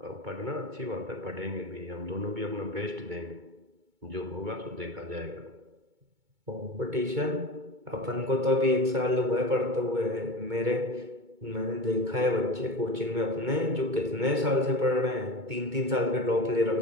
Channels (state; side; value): late; left; 2.2 ms